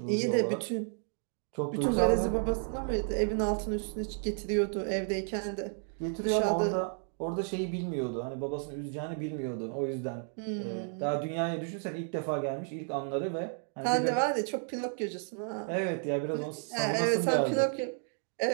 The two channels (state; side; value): silent; left; 56 dB below the other